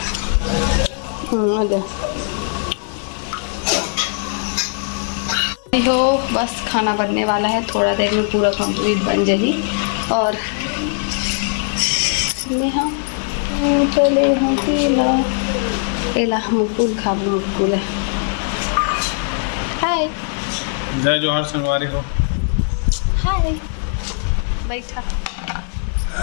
अरे संगवारी हो, बस खाना बनने वाला है, थोड़ा देर में पूरा कंप्लीट बन जाएगी। और नेहा चले हाँ केला केला मुकुल खाबू मुकुल है। हाय जय जोहार संगवारी हो। हाय बैठा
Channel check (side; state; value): right; silent; 58 dB below the other